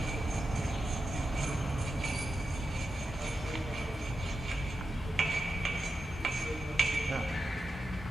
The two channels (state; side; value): normal; both; correlation 0.89